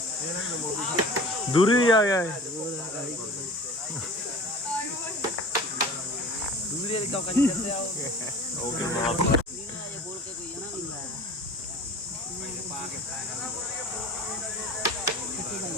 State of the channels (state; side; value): normal; both; correlation 0.41